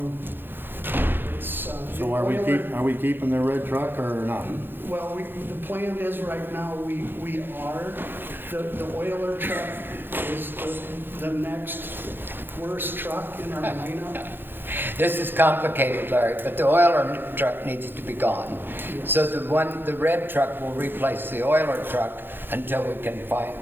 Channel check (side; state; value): left; late; 0.099 ms